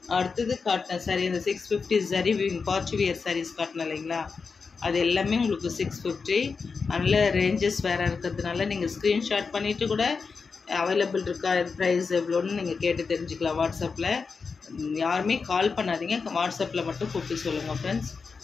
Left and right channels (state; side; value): quieter; right; 5.0 dB